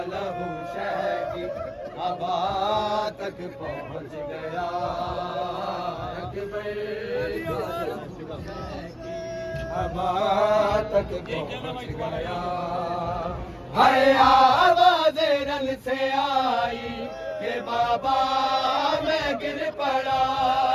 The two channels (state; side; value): identical; both; correlation 1.00